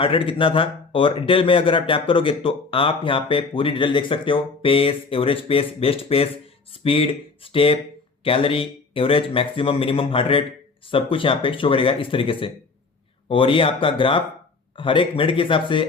रेट कितना था। और डिटेल में अगर आप टैप करोगे तो आप यहाँ पे पूरी डिटेल देख सकते हो। Pace, average pace, best pace, speed, step, calorie, average, maximum, minimum heart rate, सब कुछ यहाँ पे शो करेगा इस तरीके से। और ये आपका ग्राफ हर एक मिनट के हिसाब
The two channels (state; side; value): quieter; right; 4.3 dB